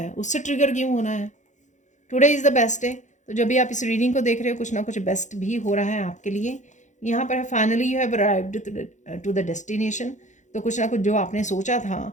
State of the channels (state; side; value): late; right; 0.35 ms